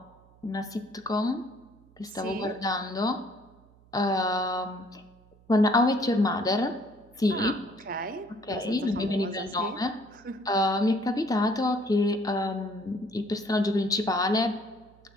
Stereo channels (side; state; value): right; noise; hum, 28 dB below the sound